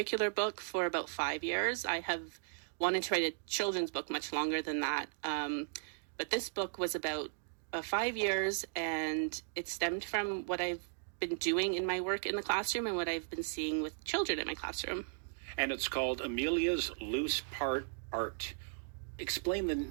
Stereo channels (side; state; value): left; silent; digital silence